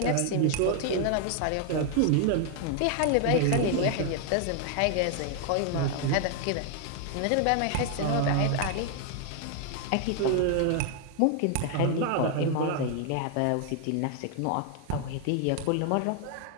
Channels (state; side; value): different; both; correlation 0.00